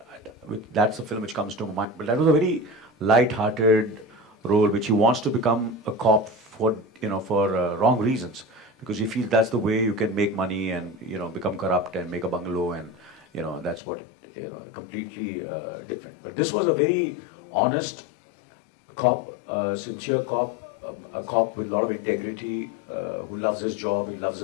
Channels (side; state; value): right; drops out; at 13.8 s